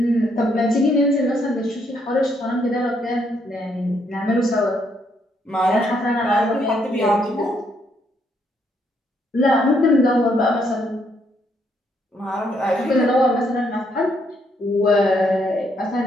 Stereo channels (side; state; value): both; normal; correlation 0.73